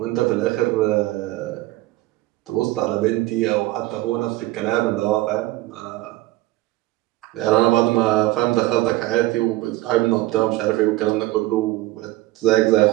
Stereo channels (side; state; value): left; quieter; 17.9 dB